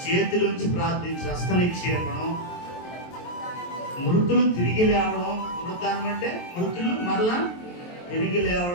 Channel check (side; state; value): right; late; 23 ms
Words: చేతిలోంచి ప్రార్థించి హస్త నిక్షేపణం, మృతులు తిరిగి లేవడం. మృతానం అంటే మృతులు మరలా తిరిగి